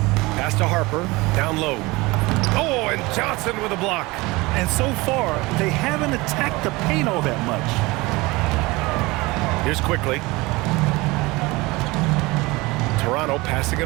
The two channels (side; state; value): left; quieter; 22.5 dB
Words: Pass to Harper, down low. Oh, and Johnson with a block. And so far, they haven't attacked the paint all that much. Here's quickly. Toronto passing